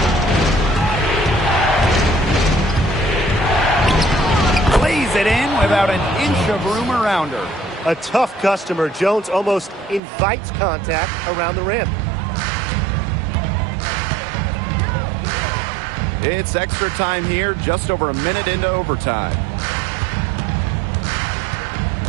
Lays it in without an inch of room around her. A tough customer. Jones almost invites contact around the rim. It's extra time here, just over a minute into overtime.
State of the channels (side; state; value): left; drops out; at 10.0 s